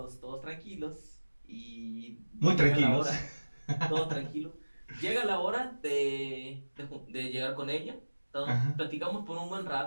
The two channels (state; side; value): inverted; both; correlation -1.00